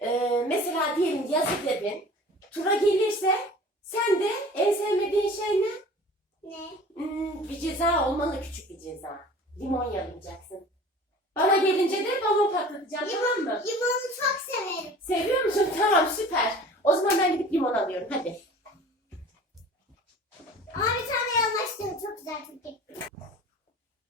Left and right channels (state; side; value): normal; both; correlation 0.43